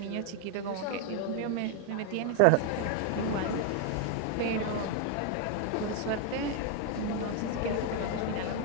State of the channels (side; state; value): both; different; correlation 0.00